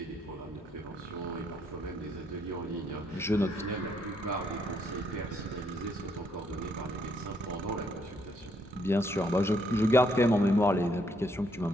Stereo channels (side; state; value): both; normal; correlation 0.72